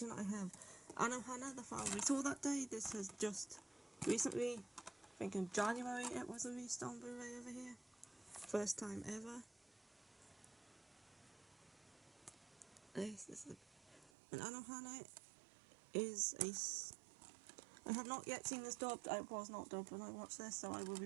I have Anohana, the file we saw that day. This has just recently, I think in January it was released on Blu-ray over here. First time ever. This is an Anohana is I have not yet seen this dubbed. I was not dubbed when I watched this, so I will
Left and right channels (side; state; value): left; drops out; at 14.1 s